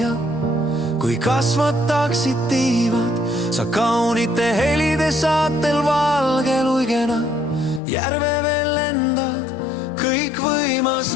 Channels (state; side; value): drops out; right; at 7.8 s